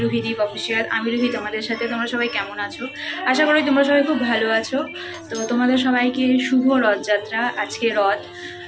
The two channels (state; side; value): identical; both; correlation 1.00